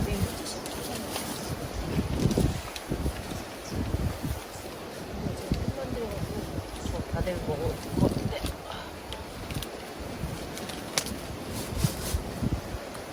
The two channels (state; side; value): identical; both; correlation 1.00